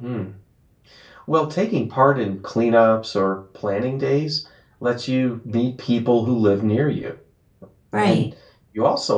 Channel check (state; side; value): identical; both; correlation 1.00